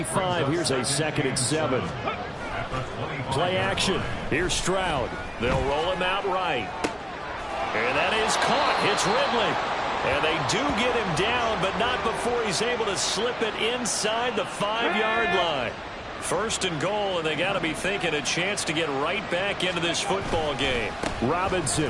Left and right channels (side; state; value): both; identical; correlation 1.00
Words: here's a 2nd and 7. Play action. Here's Stroud. They'll roll him out right. And that is caught. It's Ridley. And they do get him down, but not before he's able to slip it inside the 5-yard line. First and goal, and they got to be thinking a chance to get right back into this football game.